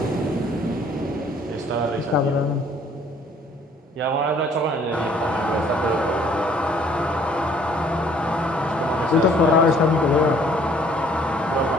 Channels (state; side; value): normal; both; correlation 0.59